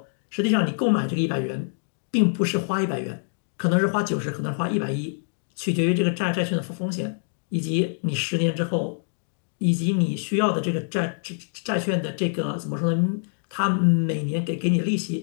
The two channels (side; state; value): right; silent; digital silence